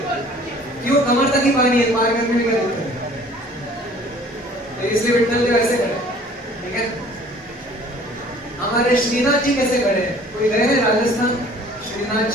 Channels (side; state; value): both; normal; correlation 0.52